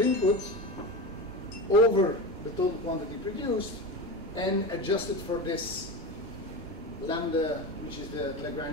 over the total quantity produced and adjusted for this lambda, which is the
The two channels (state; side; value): normal; both; correlation 0.24